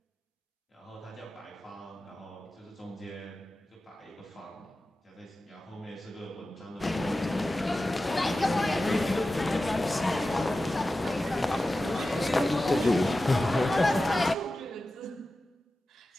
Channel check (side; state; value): both; normal; correlation 0.94